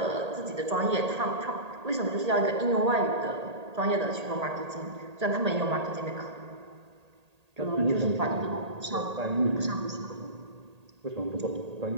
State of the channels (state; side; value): late; left; 1.8 ms